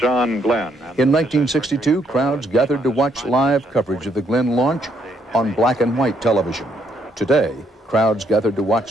Glenn. In 1962, crowds gathered to watch live coverage of the Glenn launch on black and white television. Today, crowds gathered to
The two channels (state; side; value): normal; both; correlation 0.72